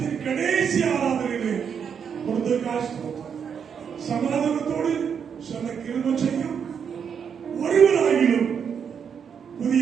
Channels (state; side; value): quieter; left; 7.2 dB